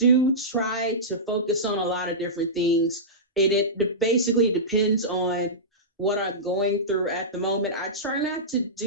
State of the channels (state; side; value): normal; both; correlation -0.16